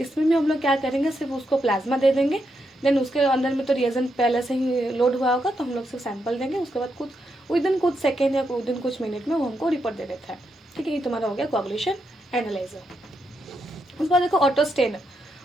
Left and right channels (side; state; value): both; normal; correlation 0.82